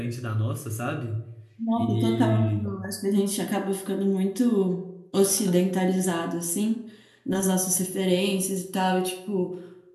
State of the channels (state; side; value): identical; both; correlation 1.00